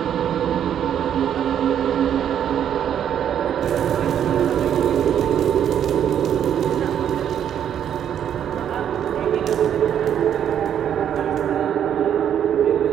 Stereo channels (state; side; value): quieter; left; 9.4 dB